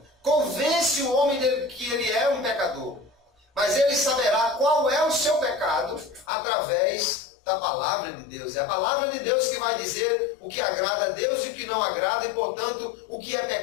convence o homem de que ele é um pecador. Mas ele saberá qual é o seu pecado através da palavra de Deus. É a palavra de Deus que vai dizer o que agrada a Deus e o que não agrada, e portanto o que é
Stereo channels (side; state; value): right; drops out; at 6.2 s